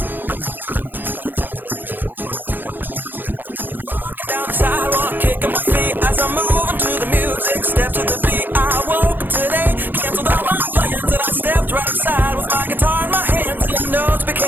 ma-ensure ang kalidad nito upang sa panahon na gagamitin ng mga magsasaka ay maayos pa yung kanilang germination rate. Napagkaalaman na ang hermetic storage ay isa sa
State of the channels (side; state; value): left; late; 0.090 ms